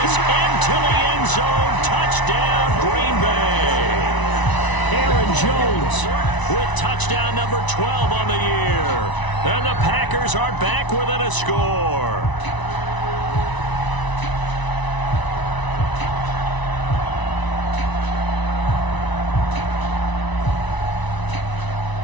into the end zone. Touchdown, Green Bay. Aaron Jones with touchdown number 12 on the year. And the Packers are back within a score.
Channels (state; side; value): late; right; 1.0 ms